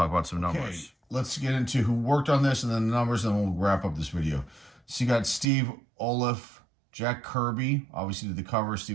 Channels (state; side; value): drops out; left; at 5.5 s